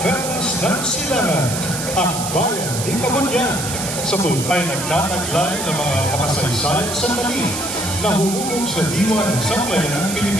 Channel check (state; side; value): noise; right; hiss, 5 dB below the sound